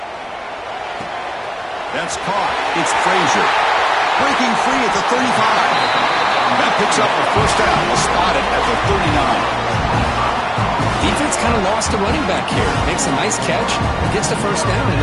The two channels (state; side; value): identical; both; correlation 1.00